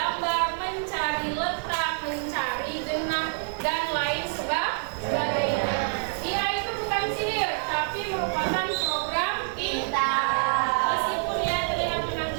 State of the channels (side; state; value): left; silent; digital silence